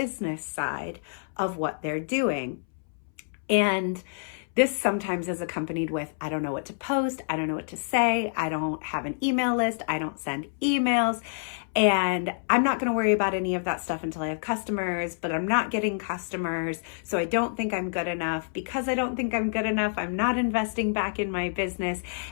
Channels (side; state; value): right; silent; 60 dB below the other